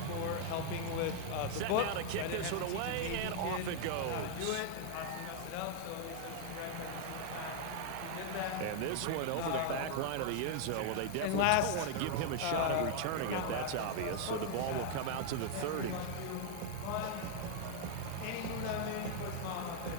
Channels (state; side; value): different; both; correlation 0.00